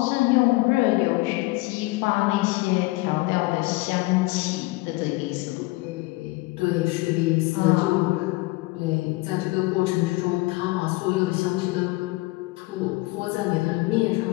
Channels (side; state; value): right; quieter; 21.9 dB